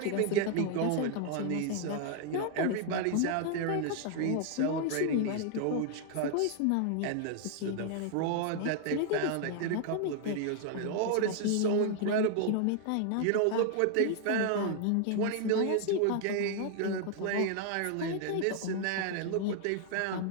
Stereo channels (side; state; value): both; different; correlation 0.00